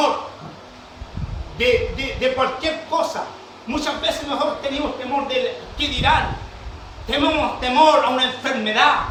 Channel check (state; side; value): identical; both; correlation 1.00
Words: de cualquier cosa. Muchas veces nosotros tenemos temor de qué dirán. Tenemos temor a una enfermedad.